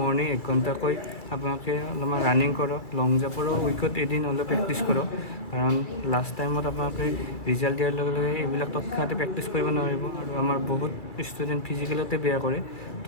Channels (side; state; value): right; late; 2.3 ms